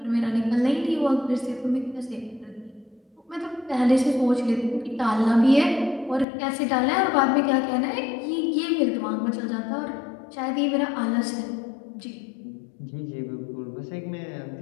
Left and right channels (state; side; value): drops out; right; at 6.2 s